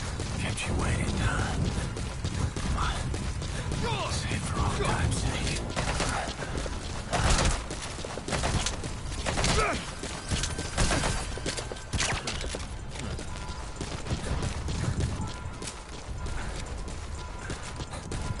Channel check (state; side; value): identical; both; correlation 1.00